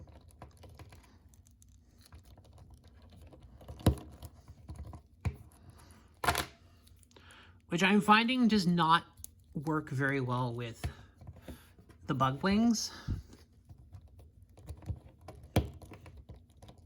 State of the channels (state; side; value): identical; both; correlation 1.00